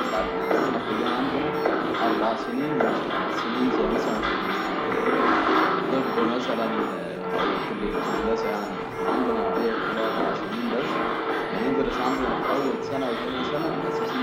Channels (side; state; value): both; identical; correlation 1.00